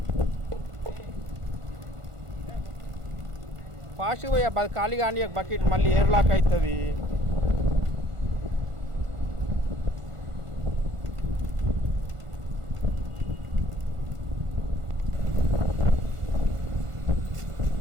ఫాస్ట్గా పోయా ఖాళీ కానీ బకెట్ మళ్ళీ ఎయిర్ లాక్ అవుతుంది.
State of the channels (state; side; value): late; left; 1.5 ms